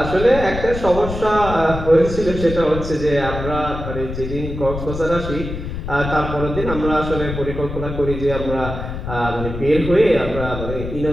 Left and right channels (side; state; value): left; noise; rumble, 7 dB below the sound